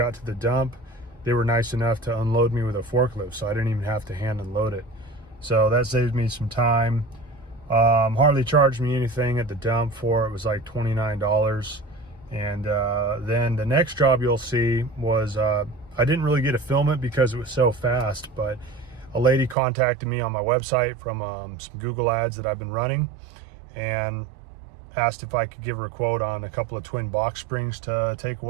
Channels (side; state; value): left; drops out; at 19.6 s